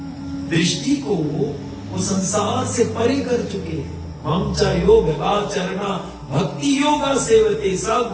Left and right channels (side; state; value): both; identical; correlation 1.00